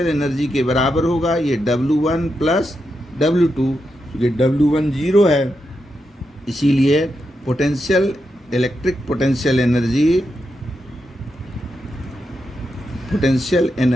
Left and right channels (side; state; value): both; normal; correlation 0.85